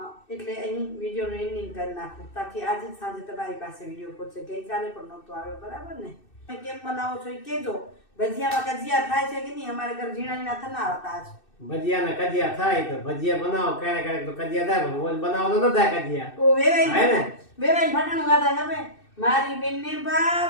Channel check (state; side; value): late; right; 2.6 ms